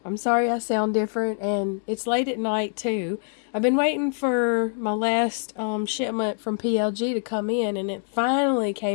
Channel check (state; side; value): silent; right; 61 dB below the other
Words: I'm sorry I sound different, and it's late at night too. I've been waiting for my last shipment from PLG to come in, and it finally